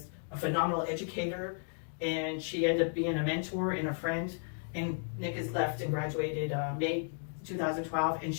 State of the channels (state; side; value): silent; right; digital silence